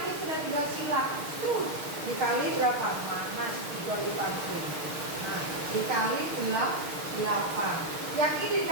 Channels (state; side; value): late; left; 6.5 ms